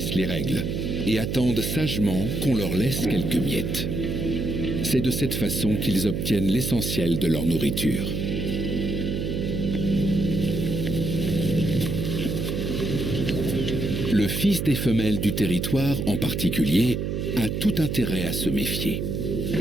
les règles et attendent sagement qu'on leur laisse quelques miettes. C'est de cette façon qu'ils obtiennent l'essentiel de leur nourriture. Le fils des femelles du territoire, en particulier, a tout intérêt à se méfier.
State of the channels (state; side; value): noise; right; hum, 2 dB below the sound